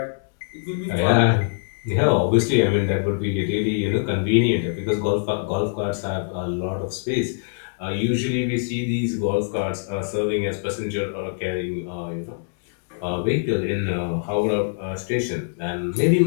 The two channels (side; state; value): right; silent; digital silence